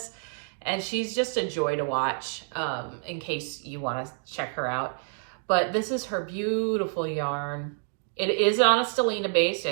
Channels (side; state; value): left; silent; 59 dB below the other